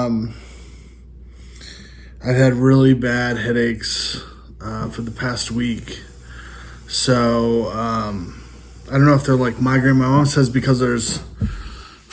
had really bad headaches for the past week. So I don't know if they're like migraine. My mom says because there's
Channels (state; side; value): identical; both; correlation 1.00